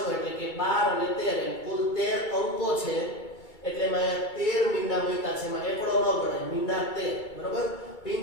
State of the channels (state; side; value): late; right; 2.3 ms